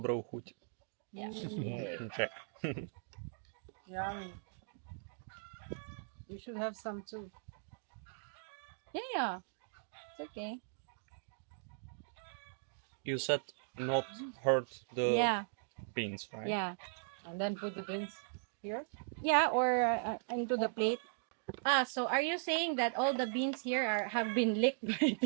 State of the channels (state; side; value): silent; left; digital silence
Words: chuť. Yeah. Okay. Yummy. You should have some too. Yeah. It's okay. You said not hurt the Yeah. beans, right? Yeah. And then put the beans here. Yeah, or into the plate. So are you saying that all the beans here have been licked by